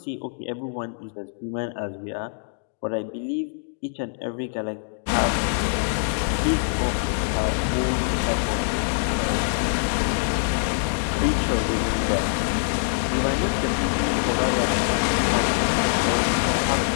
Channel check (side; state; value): right; silent; digital silence